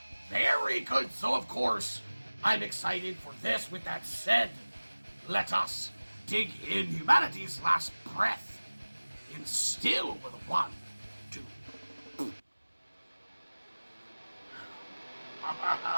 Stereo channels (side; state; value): both; inverted; correlation -1.00